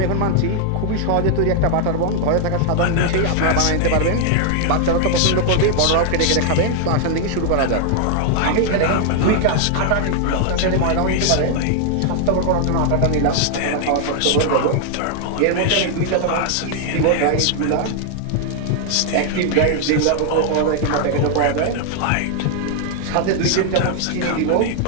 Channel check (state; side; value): different; both; correlation 0.00